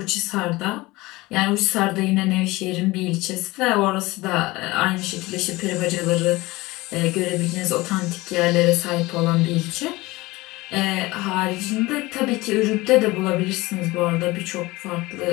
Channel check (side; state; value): right; quieter; 20.8 dB